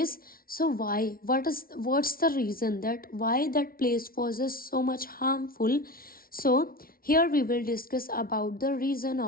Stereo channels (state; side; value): late; right; 0.43 ms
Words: so why? What's the reason that why that place was so much harmful? So here we will discuss about the reason